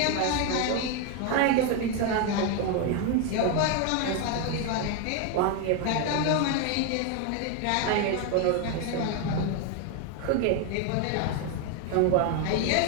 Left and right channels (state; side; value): different; both; correlation 0.01